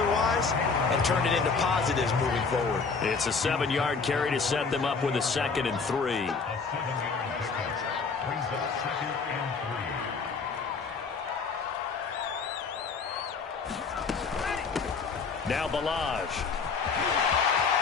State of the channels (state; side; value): quieter; right; 5.0 dB